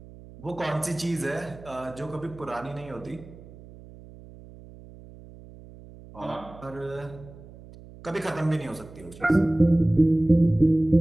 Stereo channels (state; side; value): noise; right; hum, 19 dB below the sound